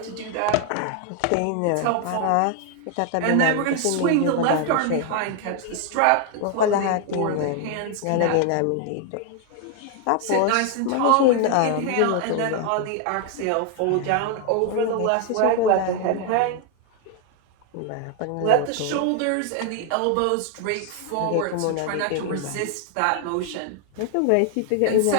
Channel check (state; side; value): different; both; correlation 0.00